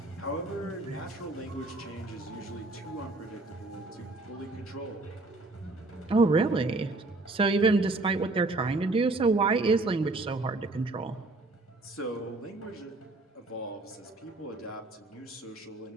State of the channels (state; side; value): quieter; left; 3.1 dB